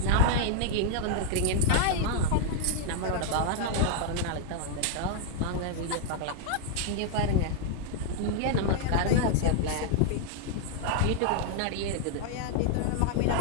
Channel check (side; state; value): both; different; correlation -0.01